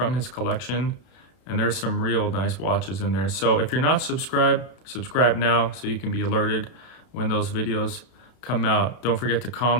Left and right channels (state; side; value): late; right; 32 ms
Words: his collection. And there's some real nice watches in there. So if you're not subscribed, subscribe now so you can be alerted when those videos come out. Don't forget to